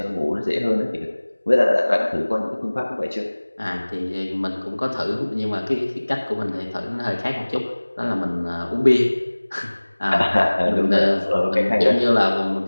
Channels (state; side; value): inverted; both; correlation -1.00